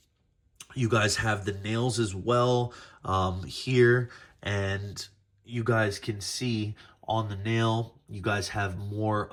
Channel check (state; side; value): identical; both; correlation 1.00